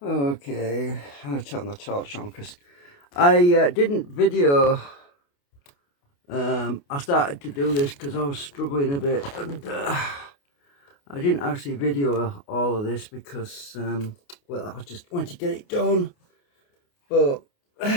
I'm going to turn the torch on because I didn't video. I started to do this because I was struggling a bit, and I didn't actually video all of this because, well, I just wanted to get it done. But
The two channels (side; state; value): right; late; 28 ms